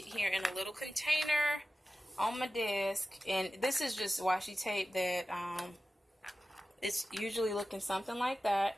here in a little container on my desk. And this is just washi tape that it's usually looking something like that.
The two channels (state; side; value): normal; both; correlation 0.95